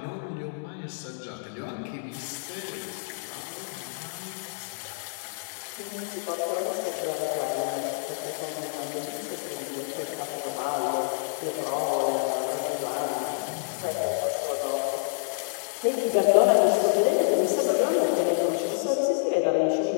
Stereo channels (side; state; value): right; silent; digital silence